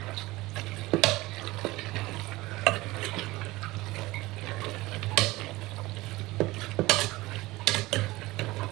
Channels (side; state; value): left; quieter; 19.8 dB